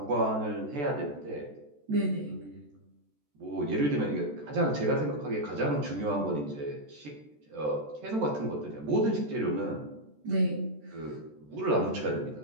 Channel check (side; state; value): left; late; 14 ms